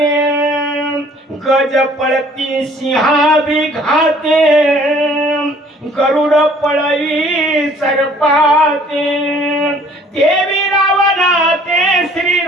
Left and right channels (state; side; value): normal; both; correlation 0.56